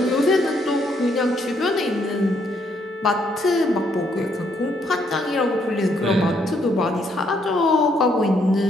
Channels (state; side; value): normal; both; correlation 0.72